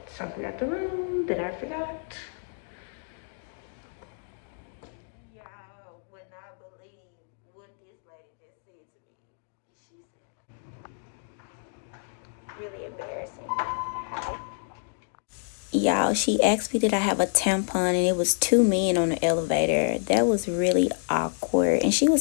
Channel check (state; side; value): silent; right; digital silence